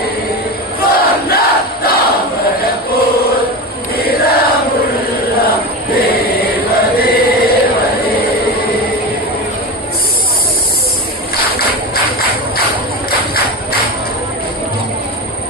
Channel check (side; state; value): both; normal; correlation 0.24